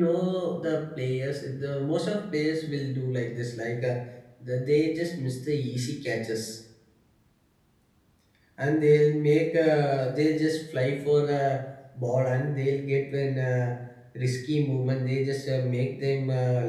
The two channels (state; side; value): identical; both; correlation 1.00